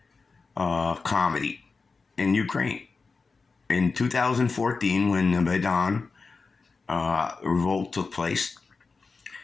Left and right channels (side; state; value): right; quieter; 4.4 dB